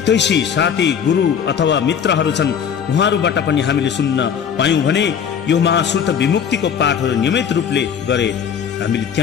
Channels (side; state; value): right; quieter; 7.8 dB